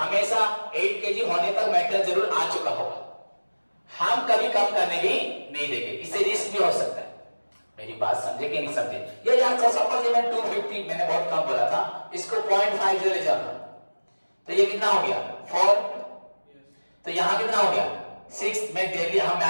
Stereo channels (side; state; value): both; inverted; correlation -1.00